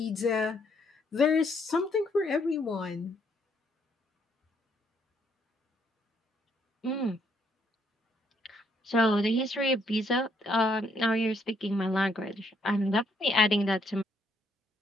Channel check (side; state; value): both; normal; correlation 0.71